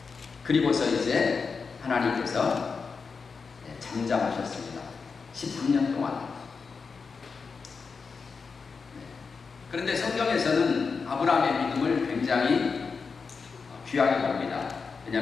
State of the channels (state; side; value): quieter; right; 5.1 dB